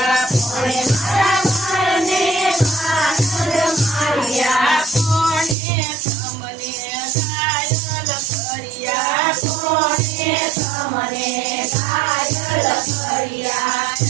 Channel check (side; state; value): left; drops out; at 5.6 s